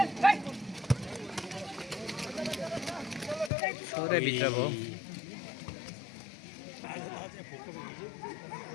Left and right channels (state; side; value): drops out; right; at 3.5 s